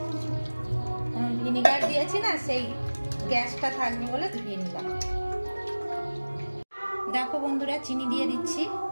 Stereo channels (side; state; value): both; inverted; correlation -1.00